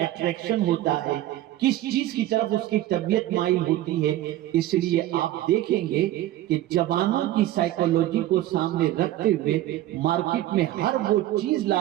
ہوتا ہے، کس چیز کی طرف اس کی طبیعت مائل ہوتی ہے۔ اس لیے آپ دیکھیں گے کہ جوانوں کی سائیکولوجی کو سامنے رکھتے ہوئے مارکیٹ میں ہر وہ چیز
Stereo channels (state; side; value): quieter; left; 14.4 dB